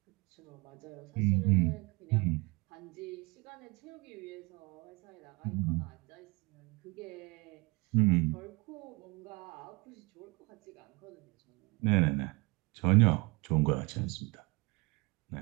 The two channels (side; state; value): left; quieter; 26.8 dB